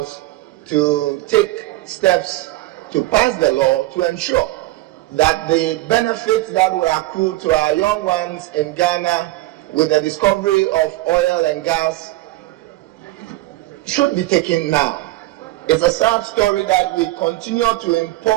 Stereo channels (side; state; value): left; quieter; 18.3 dB